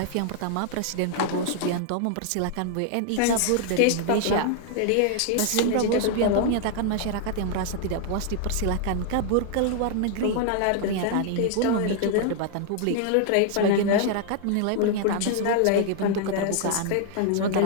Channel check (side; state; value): both; different; correlation 0.00